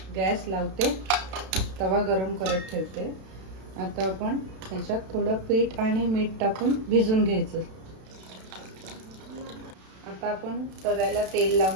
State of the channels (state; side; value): late; left; 32 ms